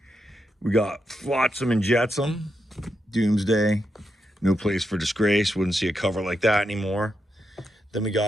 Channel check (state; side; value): normal; both; correlation 0.84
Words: We got Flotsam and Jetsam, Doomsday, No Place for Disgrace. Wouldn't see a cover like that anymore. Then we